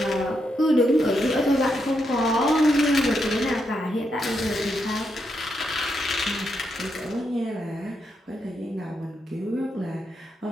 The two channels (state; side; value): normal; both; correlation 0.81